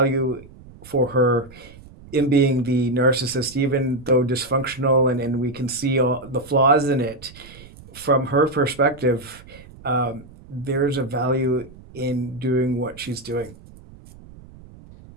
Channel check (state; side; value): noise; right; rumble, 20 dB below the sound